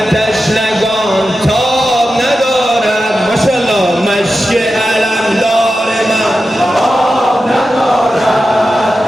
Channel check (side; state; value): both; normal; correlation 0.92